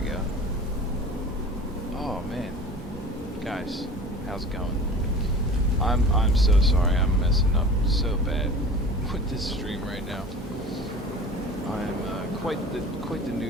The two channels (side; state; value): both; normal; correlation 0.39